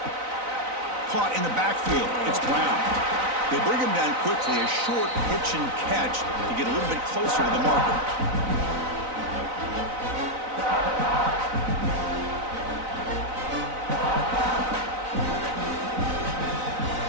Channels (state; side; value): late; left; 3.9 ms